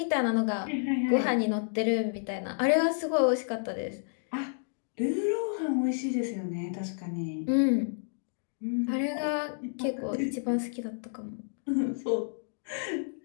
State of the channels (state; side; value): silent; right; digital silence